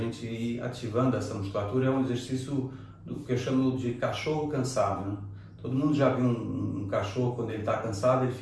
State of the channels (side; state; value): both; identical; correlation 1.00